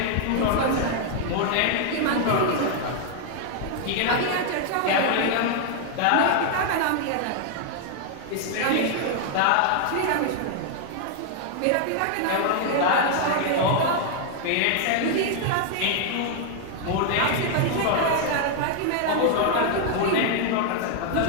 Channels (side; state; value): both; different; correlation 0.00